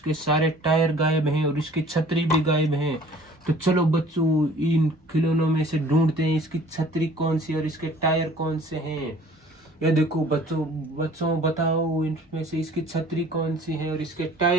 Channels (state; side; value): normal; both; correlation 0.51